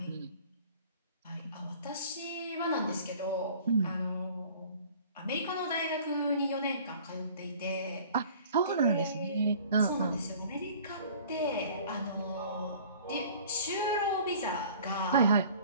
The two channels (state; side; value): inverted; both; correlation -0.49